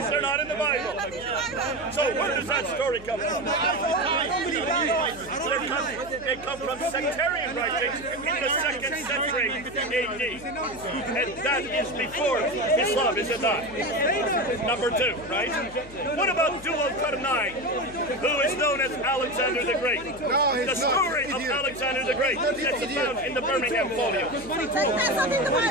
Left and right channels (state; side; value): noise; left; hum, 18 dB below the sound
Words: They're not in the Bible. So where does that story come from? They come from sectarian writings in the 2nd century AD. And that is before Islam, is it not? Number 2, right? What about Dual-Qarnayn, who is known as Alexander the Great? The story of Alexander the Great that's found in the Birmingham folio.